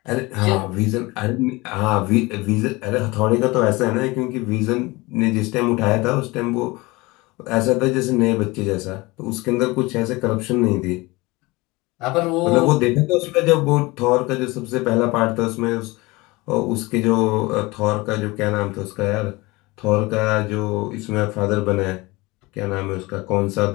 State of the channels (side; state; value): right; quieter; 22.9 dB